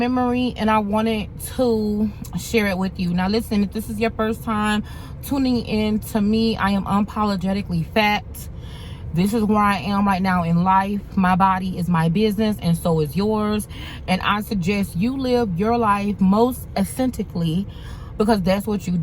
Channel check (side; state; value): both; identical; correlation 1.00